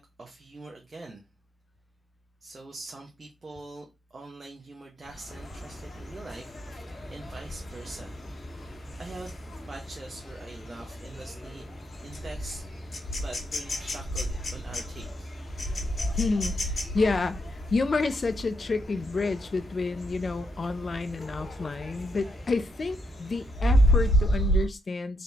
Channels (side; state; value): both; normal; correlation 0.79